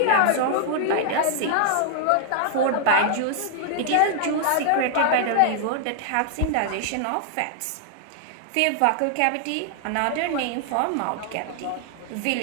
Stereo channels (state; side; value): different; both; correlation 0.00